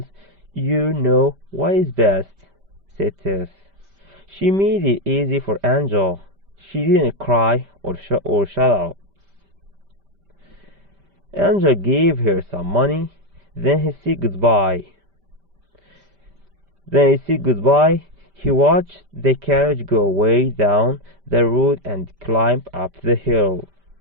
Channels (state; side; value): late; left; 5.1 ms